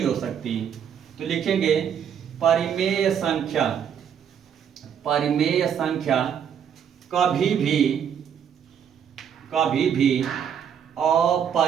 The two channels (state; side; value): quieter; left; 8.3 dB